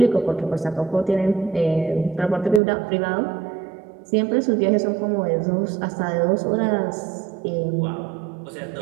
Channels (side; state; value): left; drops out; at 2.6 s